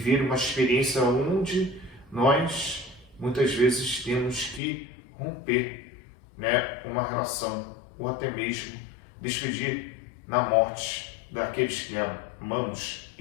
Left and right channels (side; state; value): right; drops out; at 4.6 s